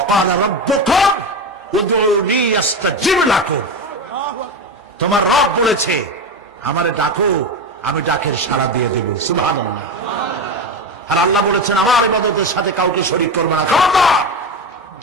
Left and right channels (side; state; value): both; normal; correlation 0.19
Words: রাব্বুকুম উদউনি আস্তাজিব লাকুম। তোমার রব বলেছে আমারে ডাকো, আমি ডাকের সাড়া দিয়ে দেব। সুবহানাল্লাহ। আর আল্লাহ বলেছেন আমার ইবাদতের সাথে কাউকে শরীক করবে না। খবরদার।